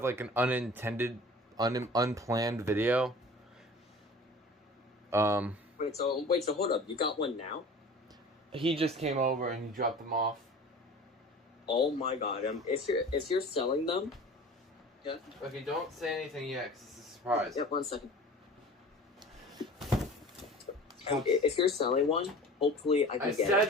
like an unintended, unplanned video. Um, Wait, so hold up. You got one now? he just came over and he dropped them off. Oh my god. If you're selling them, yeah. Okay, don't say anything yet, because it's a surprise. Yep. 1 second. If you're selling one, hopefully I can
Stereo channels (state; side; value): normal; both; correlation 0.41